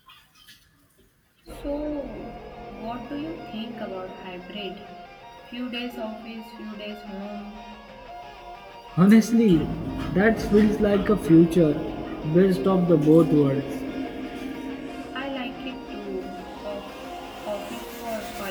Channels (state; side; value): identical; both; correlation 1.00